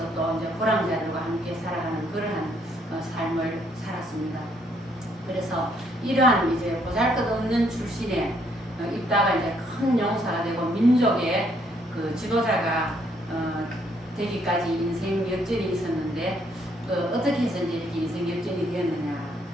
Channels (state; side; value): normal; both; correlation 0.69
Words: 또 이제 불황자들과 함께 살아가는 그러한 삶을 살았습니다. 그래서 이러한 이제 보잘것없는 출신의 입다가 이제 큰 용사가 되고 민족의 그 지도자가 되기까지 인생 역전이 있었는데 어떻게 해서 이제 이렇게 인생 역전이 되었느냐?